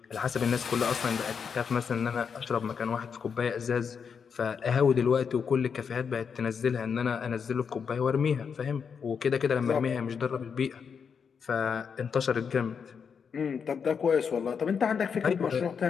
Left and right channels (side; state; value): right; quieter; 6.5 dB